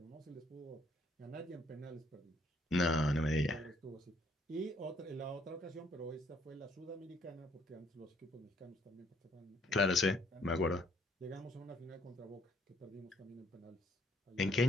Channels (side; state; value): both; normal; correlation 0.66